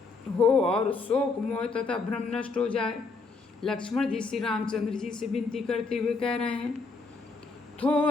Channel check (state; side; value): quieter; right; 4.1 dB